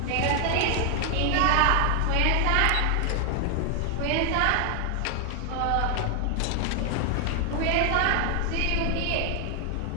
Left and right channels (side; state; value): both; different; correlation 0.00